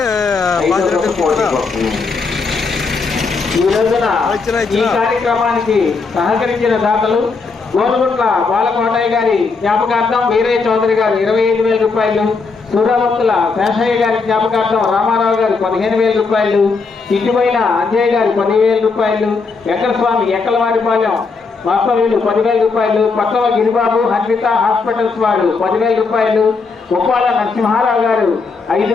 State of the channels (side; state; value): right; quieter; 4.5 dB